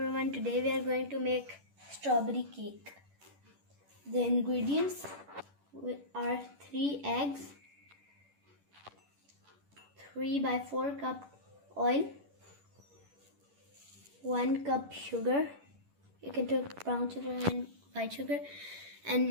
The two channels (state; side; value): late; left; 11 ms